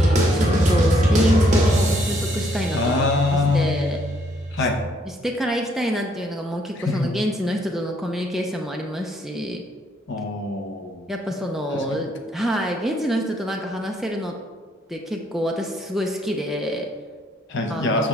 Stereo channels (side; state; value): both; normal; correlation 0.69